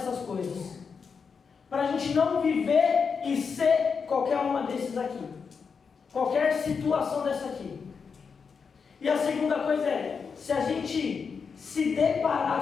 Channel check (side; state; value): right; quieter; 5.7 dB